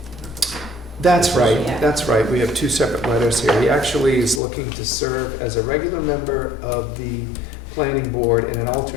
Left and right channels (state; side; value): drops out; right; at 4.4 s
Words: That's right, Yeah. that's right. We have two separate letters here. He actually is looking to serve as a regular member of the planning board and an